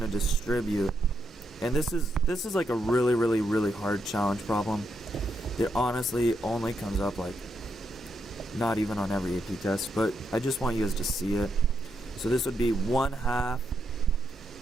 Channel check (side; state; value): both; normal; correlation 0.81